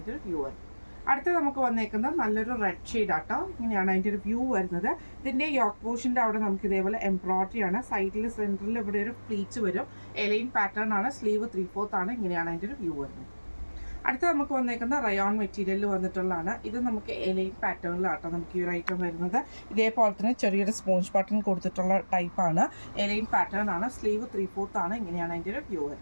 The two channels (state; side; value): inverted; both; correlation -1.00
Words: ഒരു വ്യൂ വരുന്നത്. അടുത്ത നമുക്ക് വന്നേക്കുന്നത് നല്ലൊരു റെഡ് ഷെയ്ഡ് ആട്ടോ. ഇങ്ങനെയാണ് അതിൻ്റെ ഒരു വ്യൂ വരുന്നത്. ഇതിൻ്റെ യോക്ക് പോഷൻ്റെ അവിടെ നമുക്ക് ഇതേപോലെ എംബ്രോയ്ഡറി ആണ്. സൈഡിൽ സെൻറ്ററിൽ ഇവിടെ ഒരു പ്ലീറ്റ്സ് വരും. എലൈൻ പാറ്റേൺ ആണ്. സ്ലീവ് 3/4 ആണ്. ഇങ്ങനെയാണ് അതിൻ്റെ ഒരു വ്യൂ വരുന്നത്. അടുത്ത നമുക്ക് വന്നേക്കുന്ന റയോൺ മെറ്റീരിയലിൽ വന്നിട്ടുള്ളതാണ്. ഇത് നമുക്ക് എലൈൻ പാറ്റേണിലാട്ടോ നമുക്ക് ഈ ഒരു ഐറ്റം വരുന്നത്. ഇതേപോലെ തന്നെ ചെറിയൊരു സ്പോഞ്ച് ബട്ടൺ കൊടുത്തിട്ടുള്ള ടൈപ്പാണ്. എലൈൻ പാറ്റേൺ ആണ്. സ്ലീവ് 3/4 ആണ്. ഇങ്ങനെയാണ് അതിൻ്റെ ഒരു വ്യൂ